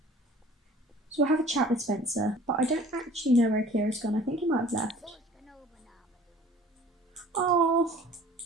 So we'll have a chat with Spencer, but I don't actually know where Akira's gone. I think he might have left. Oh,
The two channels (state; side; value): normal; both; correlation 0.49